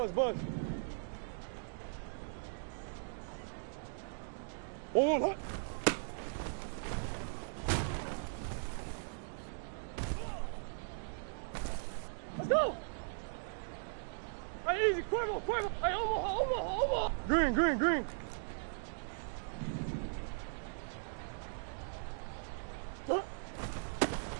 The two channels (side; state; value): left; silent; digital silence